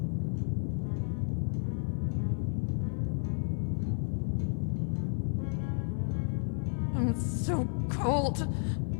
I'm so cold.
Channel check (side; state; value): right; silent; 56 dB below the other